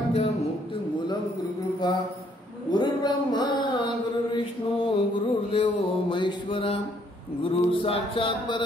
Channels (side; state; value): both; normal; correlation 0.67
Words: मुक्तिमूलं गुरुकृपा गुरुर्ब्रह्मा गुरुर्विष्णु गुरुर्देवो महेश्वरा गुरु साक्षात्